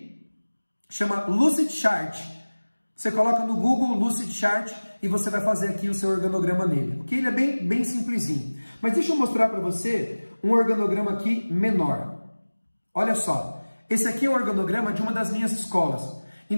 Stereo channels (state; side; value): inverted; both; correlation -1.00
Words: Chama Lucidchart. Você coloca no Google Lucidchart e você vai fazer aqui o seu organograma nele. Ok? Ele é bem simplesinho. Mas deixa eu mostrar para você um organograma aqui menor. Olha só. Esse aqui é o organograma de uma das minhas escolas.